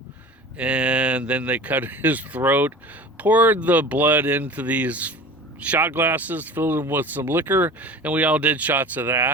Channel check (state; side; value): normal; both; correlation 0.38